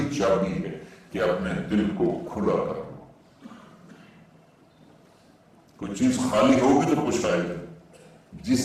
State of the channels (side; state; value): both; identical; correlation 1.00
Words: چابی ہے کہ اپنے دل کو کھلا کر لو۔ کوئی چیز خالی ہوگی تو کچھ آئے گا۔